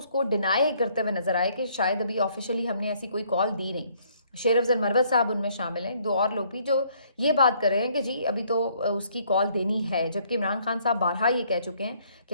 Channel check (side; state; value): both; inverted; correlation -0.65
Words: डिनाई करते हुए नजर आए कि शायद अभी ऑफिशियली हमने ऐसी कोई कॉल दी नहीं। शेर अफजल मरवत साहब उनमें शामिल हैं, दो और लोग भी जो ये बात कर रहे हैं कि जी अभी तो उसकी कॉल देनी है, जबकि इमरान खान साहब बारहा ये कह चुके हैं